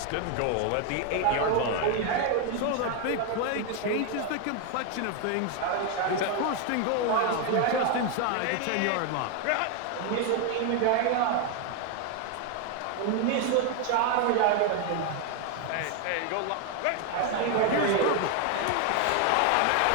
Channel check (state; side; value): different; both; correlation 0.01